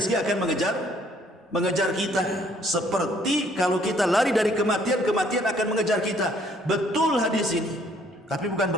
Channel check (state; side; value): normal; both; correlation 0.63